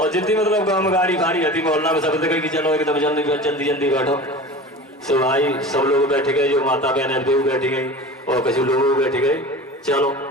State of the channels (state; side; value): normal; both; correlation 0.35